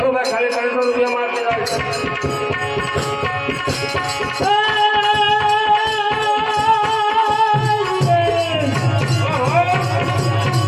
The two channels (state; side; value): identical; both; correlation 1.00